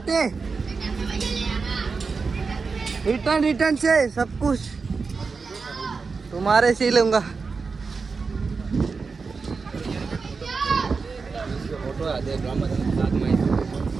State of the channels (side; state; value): left; quieter; 4.7 dB